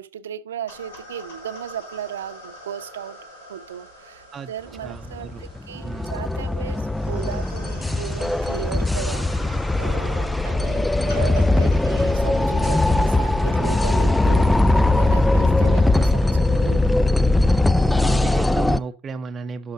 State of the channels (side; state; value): both; normal; correlation 0.90